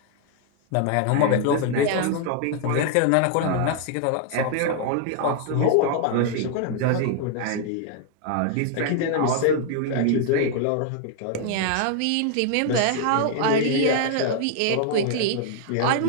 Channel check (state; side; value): different; both; correlation 0.00